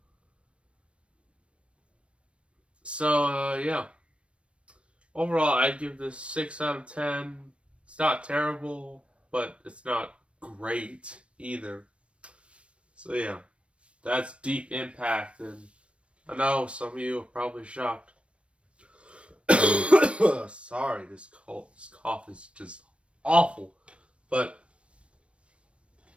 So, yeah. Overall, I'd give this 6 out of 10. It's not terrible, but it's not great either. So, yeah. That's Deep Impact, and I know some of you are probably shocked. Sorry, this cough is just awful. But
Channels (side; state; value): left; late; 0.060 ms